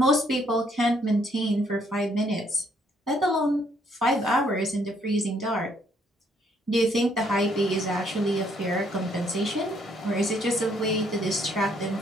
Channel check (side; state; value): both; normal; correlation 0.69